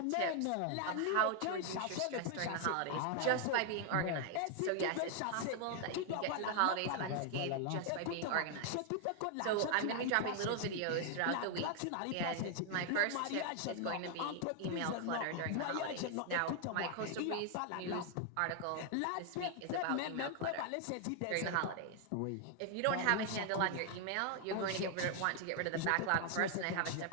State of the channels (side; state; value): both; different; correlation 0.00